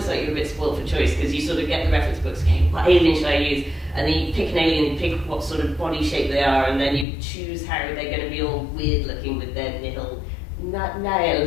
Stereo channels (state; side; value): drops out; right; at 7.1 s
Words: like you're a bit spoiled for choice, because you sort of get the reference books, okay, what alien should I use? And then you pick an alien, you pick what sort of body shape they are, and then you choose how they're going to be all weird looking with their nihil